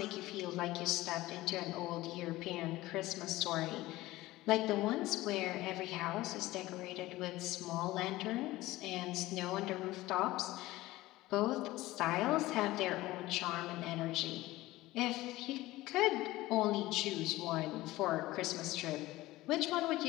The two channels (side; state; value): right; quieter; 17.8 dB